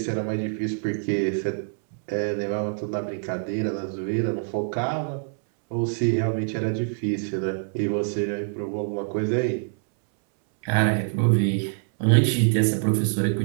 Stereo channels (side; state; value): left; silent; 62 dB below the other